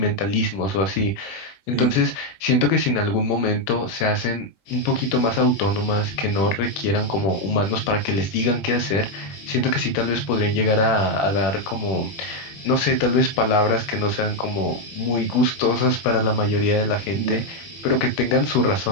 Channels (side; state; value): right; late; 21 ms